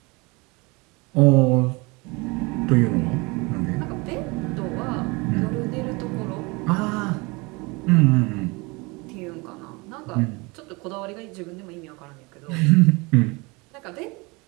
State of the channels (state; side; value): quieter; left; 26.4 dB